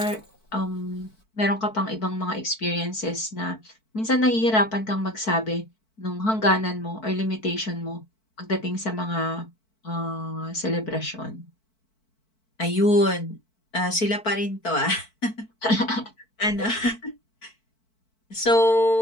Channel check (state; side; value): late; right; 4.5 ms